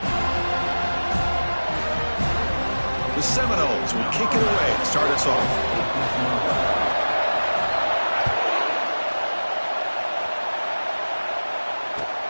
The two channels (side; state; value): both; inverted; correlation -1.00